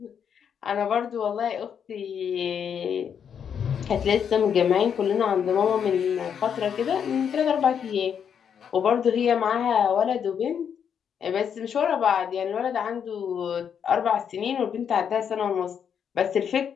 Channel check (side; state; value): right; quieter; 7.8 dB